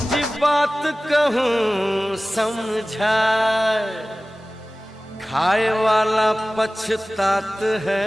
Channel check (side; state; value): both; normal; correlation 0.97